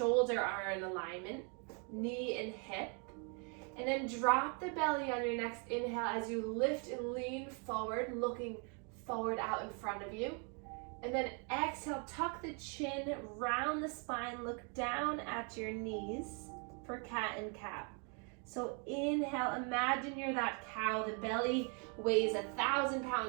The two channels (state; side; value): quieter; left; 37.4 dB